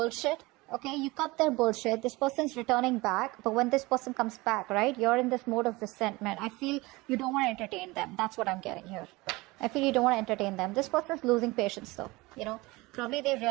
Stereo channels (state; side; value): quieter; left; 22.2 dB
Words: Okay, you cut their bullshit. This person's returning back. But when this person comes back, right, you're in this mode of resentment. I feel you don't want to entertain them. That's what I'm getting here. I feel you don't want to entertain them. This person's losing patience though. Probably they